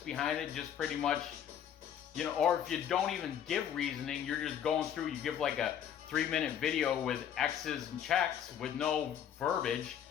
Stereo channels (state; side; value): quieter; right; 9.3 dB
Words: behind it, just pretty much, you know, or if you don't even give reasoning, you're just going through, you give like a 3-minute video with X's and checks with no verbiage,